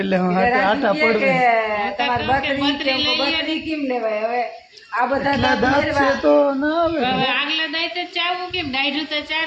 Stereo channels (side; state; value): both; identical; correlation 1.00